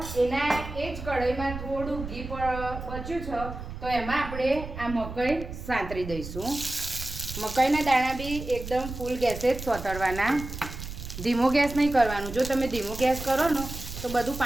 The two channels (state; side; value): noise; right; rumble, 9 dB below the sound